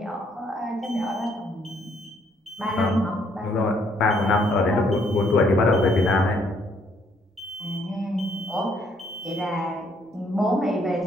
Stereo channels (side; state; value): both; normal; correlation 0.68